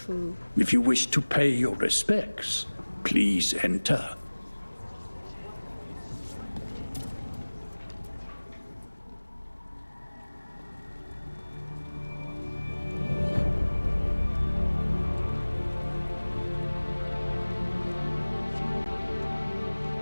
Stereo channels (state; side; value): inverted; both; correlation -1.00